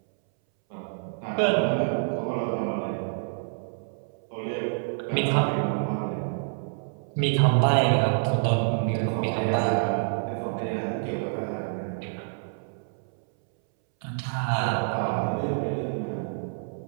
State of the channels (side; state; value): left; silent; 60 dB below the other